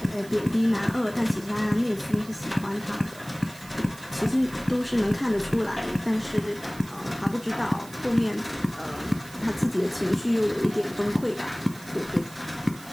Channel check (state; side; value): noise; right; hiss, 19 dB below the sound